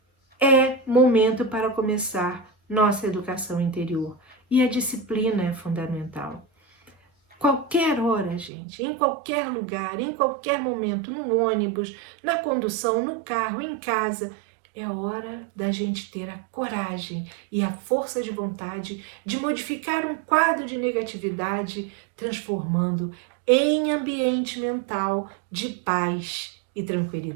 é momento para começar nossa educação interior. E a disciplina é fundamental. Qualquer hora, gente, em qualquer lugar, em qualquer momento, no ônibus, na condução, no carro, em casa, é hora da gente ter a coragem e a força de vontade de modificar um quadro de negatividade, transformando em ambiente mental de paz e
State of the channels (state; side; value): drops out; left; at 8.5 s